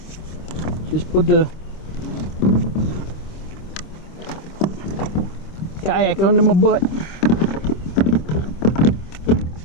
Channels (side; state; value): right; late; 26 ms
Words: Just put the kayak under my butt.